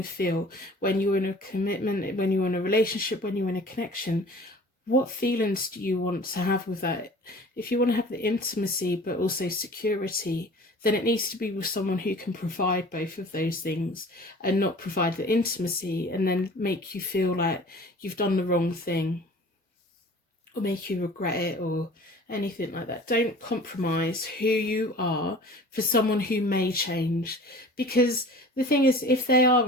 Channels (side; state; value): both; normal; correlation 0.45